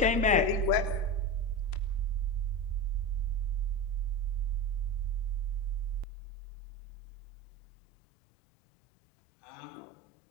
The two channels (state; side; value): drops out; right; at 6.1 s